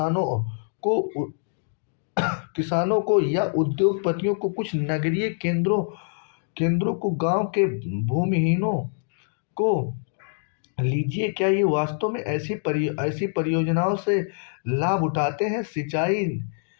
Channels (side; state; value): right; silent; digital silence